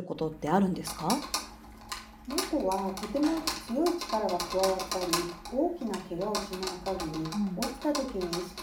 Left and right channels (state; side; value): identical; both; correlation 1.00